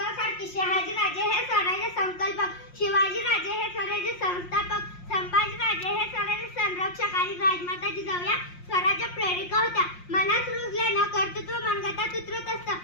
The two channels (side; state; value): right; late; 5.6 ms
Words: शहाजीराजे हे स्वराज्य संकल्पक, शिवाजीराजे हे स्वराज्य संस्थापक, संभाजीराजे हे स्वराज्य संरक्षक आणि राजमाता जिजाऊ या स्वराज्य प्रेरिका होत्या. मनास रुजल्यानं कर्तृत्व मनगटात उतरत असतं,